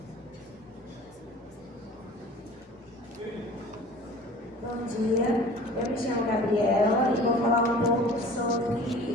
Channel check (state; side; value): normal; both; correlation 0.44